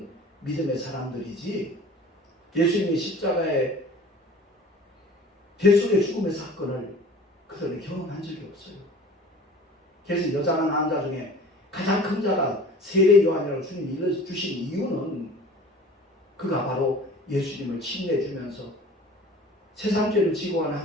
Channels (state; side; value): normal; both; correlation 0.43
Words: 믿음의 사람들이지, 예수님의 십자가의 대속의 죽음의 사건을 그들은 경험한 적이 없어요. 그래서 여자나 남자 중에 가장 큰 자가 세례 요한이라고 주님이 일러주신 이유는 그가 바로 예수님을 침례해주면서 세상 죄를 지고 간